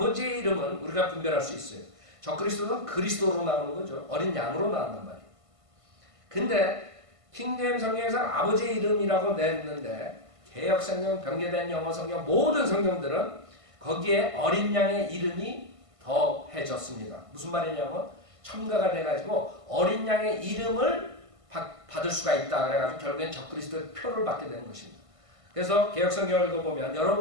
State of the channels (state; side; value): late; left; 1.5 ms